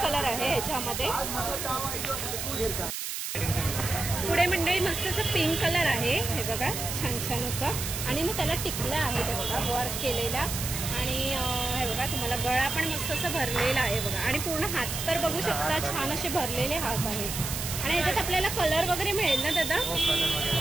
कलर आहे ह्याच्यामध्ये. पुढे मंडळी मस्त असं पिंक कलर आहे. हे बघा छान छान असं. आणि ना त्याला टिकला आहे ते बघा वर्क केलेला. आणि हे बघा तुम्हाला गळा पण मस्त असं भरलेला आहे बघा. आणि पूर्ण हात तर बघू शकता छान असे भरलेले हात आहेत. आणि याच्यात आपल्याला कलर वगैरे मिळेल ना दादा?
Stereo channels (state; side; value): noise; right; hiss, 4 dB below the sound